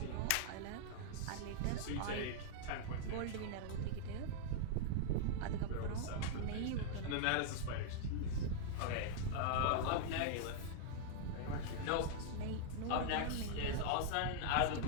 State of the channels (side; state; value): both; different; correlation -0.01